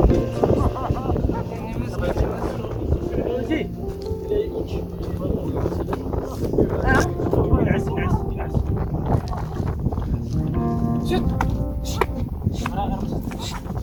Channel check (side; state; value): both; identical; correlation 1.00